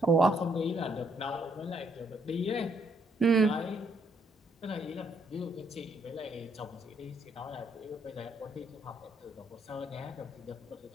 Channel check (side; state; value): both; normal; correlation 0.72